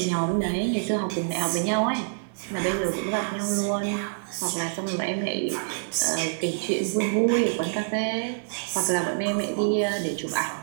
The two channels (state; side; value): silent; left; digital silence